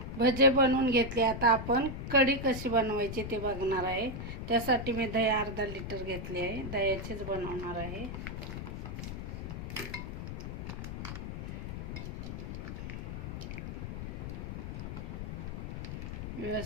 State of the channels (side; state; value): left; noise; rumble, 6 dB below the sound